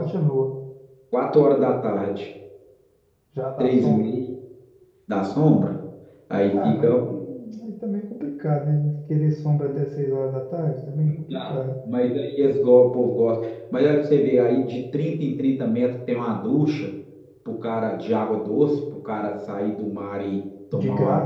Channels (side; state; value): both; identical; correlation 1.00